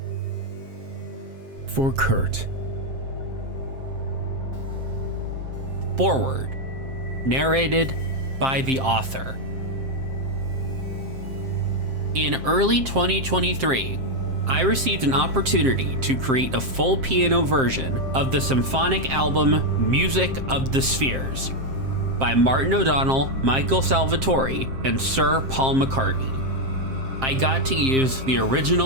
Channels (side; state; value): left; late; 7.6 ms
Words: For Kurt. Foreword. Narrated by the author. In early 2023, I received an opportunity to create a full piano version of the symphonic album Music of the Spheres by Martin O'Donnell, Michael Salvatori, and Sir Paul McCartney. I got to use the